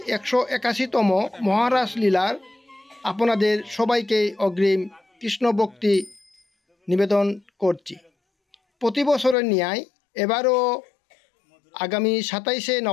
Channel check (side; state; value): right; drops out; at 9.3 s